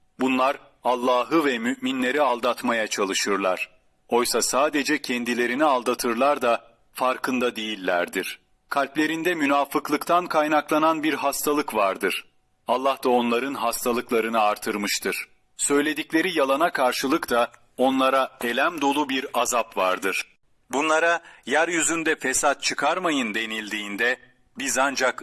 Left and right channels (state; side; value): identical; both; correlation 1.00